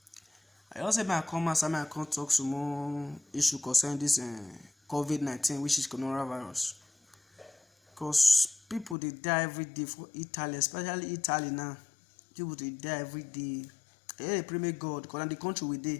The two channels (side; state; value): right; drops out; at 9.0 s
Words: I also may come and I can talk some more issue concerning this COVID-19, which is coronavirus. Because people they die every day for Italy, especially Italy now. People they die every day. They pray God, because in the country we